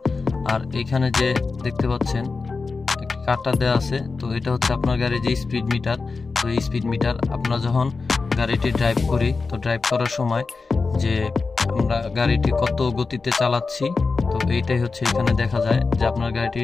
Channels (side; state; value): right; quieter; 4.3 dB